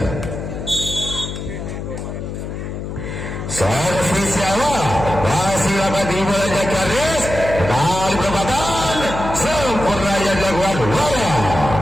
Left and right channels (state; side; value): noise; left; hum, 7 dB below the sound